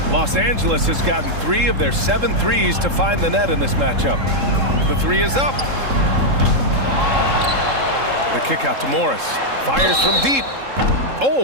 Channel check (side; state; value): left; late; 3.7 ms